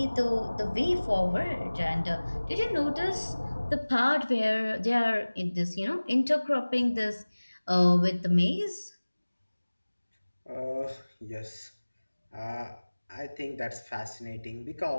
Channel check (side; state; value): both; inverted; correlation -1.00